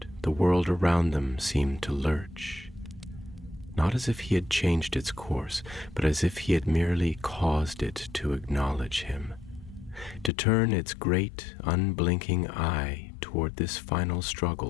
the world around them seemed to lurch. not as if he had changed its course, but as if he had merely caused it to acknowledge him, to turn its great, unblinking eye toward this final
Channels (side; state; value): right; drops out; at 10.3 s